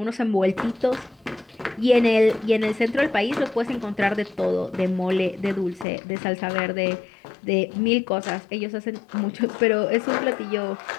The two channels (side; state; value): right; drops out; at 5.9 s